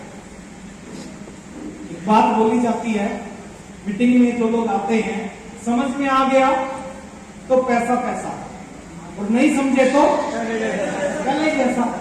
एक बात बोली जाती है मीटिंग में, जो लोग आते हैं, समझ में आ गया तो पैसा पैसा, और नहीं समझे तो गले जैसा।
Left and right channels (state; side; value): identical; both; correlation 1.00